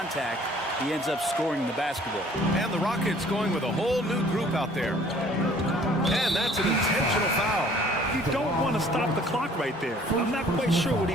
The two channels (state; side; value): normal; both; correlation 0.55